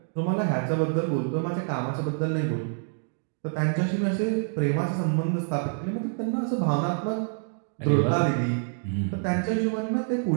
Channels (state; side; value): silent; left; 60 dB below the other